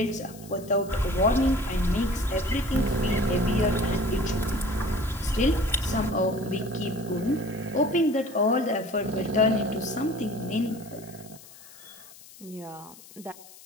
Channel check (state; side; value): noise; left; hiss, 20 dB below the sound